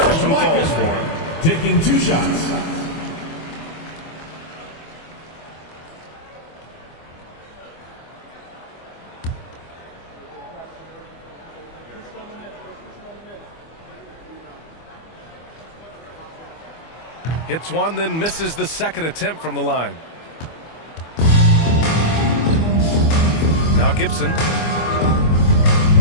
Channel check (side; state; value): right; late; 25 ms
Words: falls for him. Taking 2 shots. Hits one, then misses the second attempt from the line. Now Gibson.